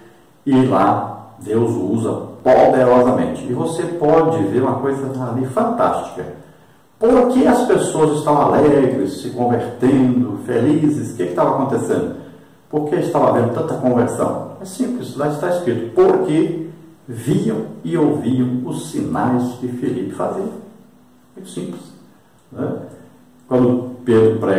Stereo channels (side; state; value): both; identical; correlation 1.00